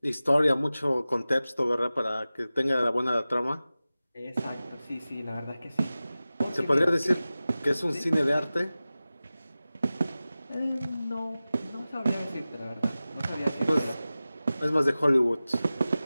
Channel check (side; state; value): both; inverted; correlation -0.96